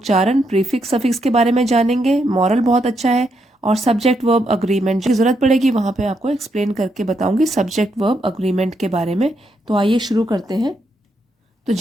प्रीफिक्स सफिक्स के बारे में जानेंगे। मॉरल बहुत अच्छा है। और सब्जेक्ट वर्ब अग्रीमेंट की ज़रूरत पड़ेगी वहाँ पे आपको एक्सप्लेन करके बताऊंगी सब्जेक्ट वर्ब अग्रीमेंट के बारे में। तो आइए शुरू करते हैं। तो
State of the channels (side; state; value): both; normal; correlation 0.79